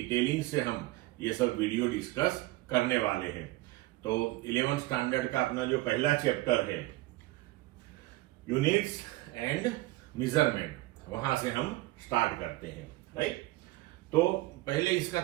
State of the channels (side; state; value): left; quieter; 18.9 dB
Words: से हम ये सब वीडियो डिस्कस करने वाले हैं। तो 11th स्टैंडर्ड का अपना जो पहला चैप्टर है यूनिट्स एंड मेजरमेंट, वहां से हम स्टार्ट करते हैं। राइट, तो पहले